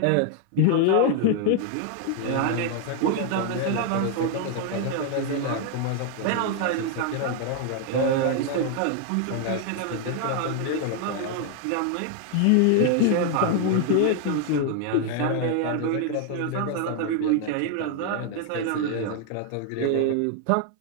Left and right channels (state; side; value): different; both; correlation 0.00